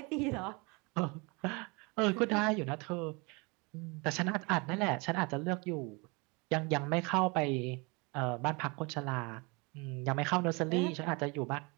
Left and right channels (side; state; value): left; quieter; 28.7 dB